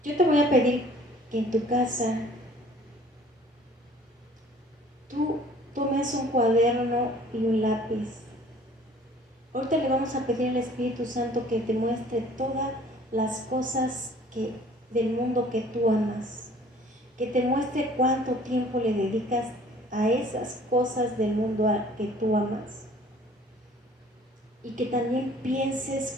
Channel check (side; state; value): both; normal; correlation 0.53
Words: Yo te voy a pedir que en tu casa tú tomes un cuaderno y un lápiz. Ahorita le vamos a pedir al Espíritu Santo que te muestre todas las cosas del mundo que tú amas, que te muestre cuánto tiempo le dedicas a esas cosas del mundo que tú amas, y que también